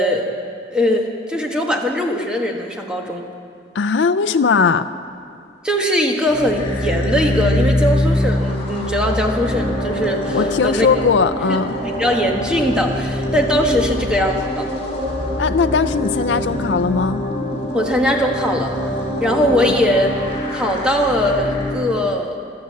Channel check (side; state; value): both; normal; correlation 0.48